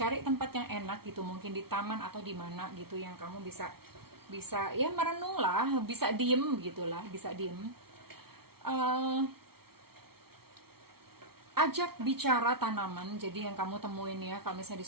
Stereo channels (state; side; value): late; left; 0.94 ms